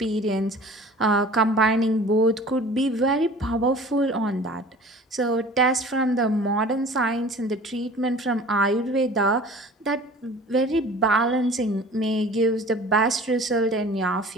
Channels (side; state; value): both; normal; correlation 0.44